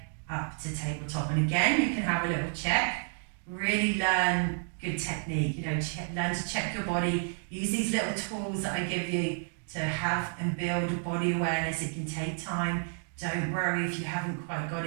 up to tabletop. And again, you can have a little check. Really learn good technique. Learn to check your body. Use these little tools that I give you to have and build body awareness. It can take time. Don't worry if you haven't quite got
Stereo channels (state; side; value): silent; left; 57 dB below the other